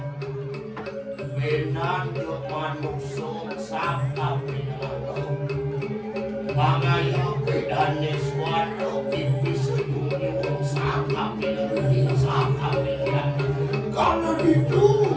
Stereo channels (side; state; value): both; identical; correlation 1.00